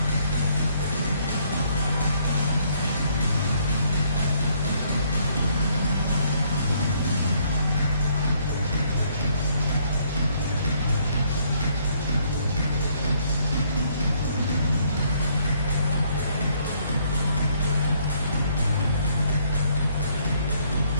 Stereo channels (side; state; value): both; inverted; correlation -0.67